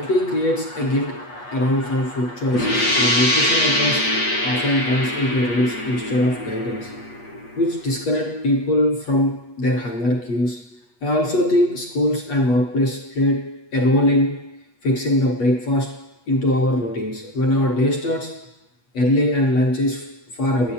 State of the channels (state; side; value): late; right; 8.3 ms